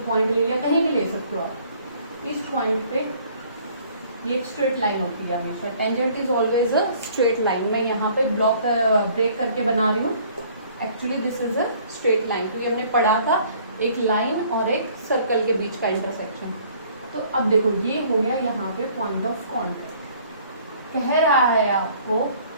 पॉइंट ले लिया, कहीं भी ले सकते हो आप। इस पॉइंट पे ये एक स्ट्रेट लाइन होती है हमेशा, tangent is always a straight line. मैं यहाँ पे ब्लॉक ब्रेक करके बना रही हूँ, actually this is a straight line, क्योंकि हमने पढ़ा था एक लाइन और एक सर्कल के बीच का इंटरसेक्शन। तो अब देखो ये हो गया यहाँ पे पॉइंट ऑफ कॉन्टैक्ट। कह रहा है आपको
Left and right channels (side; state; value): both; inverted; correlation -0.57